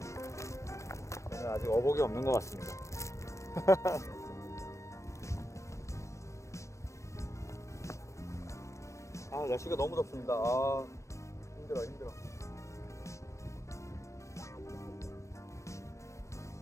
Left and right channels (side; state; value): right; late; 0.15 ms